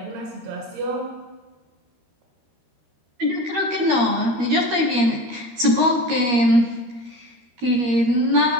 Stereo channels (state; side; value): late; left; 13 ms